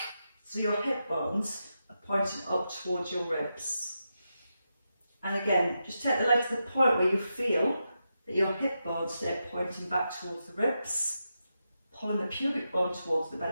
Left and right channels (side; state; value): both; inverted; correlation -0.87